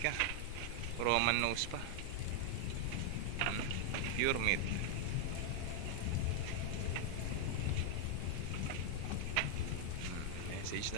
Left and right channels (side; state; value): both; different; correlation 0.00